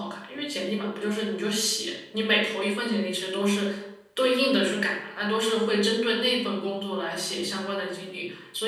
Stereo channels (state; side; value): identical; both; correlation 1.00